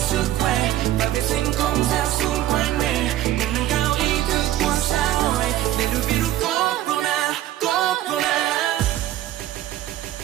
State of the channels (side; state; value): left; quieter; 13.6 dB